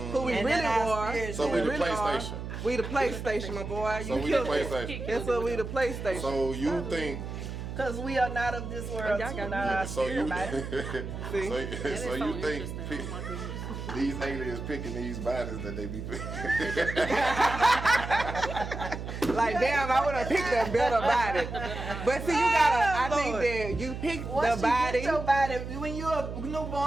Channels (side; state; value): right; noise; hum, 7 dB below the sound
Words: who we And really then our are. spirits So who we the really are. PlayStation. We the PlayStation, my boy. So You we the killed it. PlayStation. That's what we the PlayStation. So you think? Because we are not of this world. y'all too, got not our So you? spirit body. so you think these aliens picking these bodies that they be picking? Like damn, I would have picked a better body. But see, you gotta. I think that you pick Once the you body. get your body, when you're a